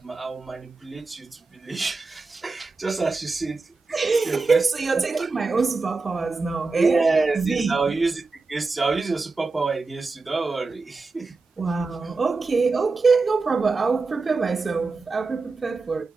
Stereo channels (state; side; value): quieter; left; 3.9 dB